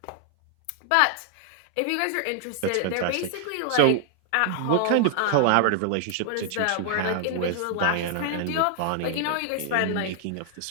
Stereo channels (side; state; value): both; different; correlation 0.00